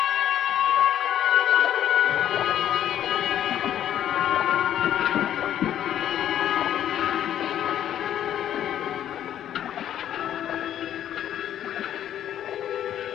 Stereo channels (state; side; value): quieter; right; 10.8 dB